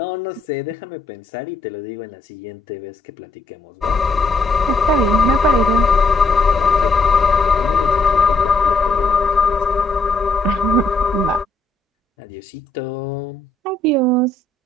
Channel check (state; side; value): quieter; right; 3.1 dB